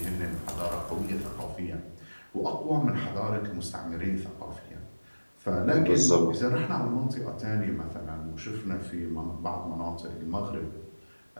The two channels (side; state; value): both; inverted; correlation -1.00